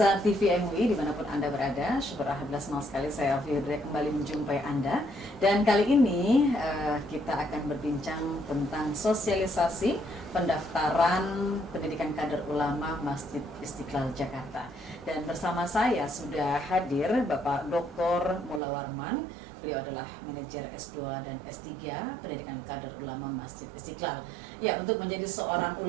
TV MUI dimanapun Anda berada, syukur alhamdulillah senang sekali saya Alfie kembali menjumpai Anda. Dan kali ini kita akan berbincang tentang sosialisasi pendaftaran pendidikan kader ulama Masjid Istiqlal Jakarta. Dan bersama saya sudah hadir Bapak Dr. Mula Warman. Beliau adalah manajer S2 dan S3 pendidikan kader ulama Masjid Istiqlal. Ya, untuk menjadi seorang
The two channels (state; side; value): drops out; left; at 18.6 s